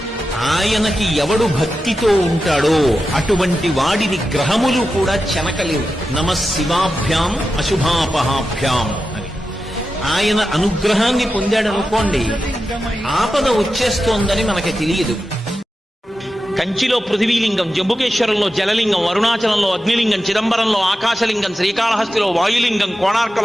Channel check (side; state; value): both; normal; correlation 0.91